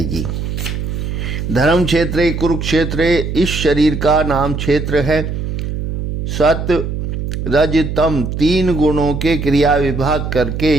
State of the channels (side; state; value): right; noise; hum, 4 dB below the sound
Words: धर्म क्षेत्र कुरुक्षेत्र इस शरीर का नाम क्षेत्र है। सत रज तम 3 गुणों के क्रिया विभाग करके